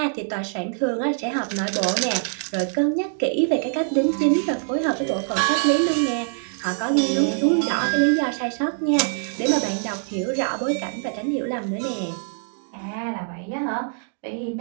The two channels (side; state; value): left; silent; 63 dB below the other